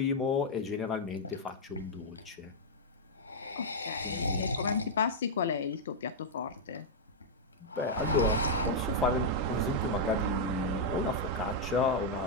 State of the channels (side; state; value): both; normal; correlation -0.05